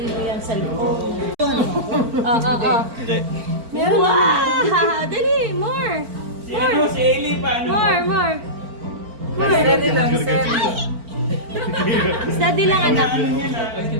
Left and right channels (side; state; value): left; late; 4.4 ms